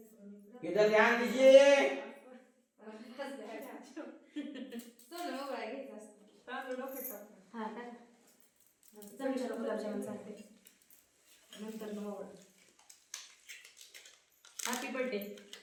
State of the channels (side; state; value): both; identical; correlation 1.00